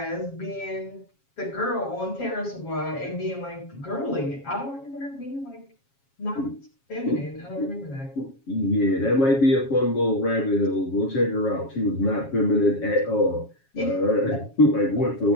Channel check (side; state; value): right; late; 7.3 ms